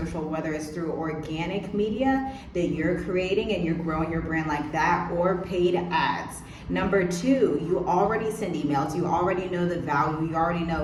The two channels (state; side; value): identical; both; correlation 1.00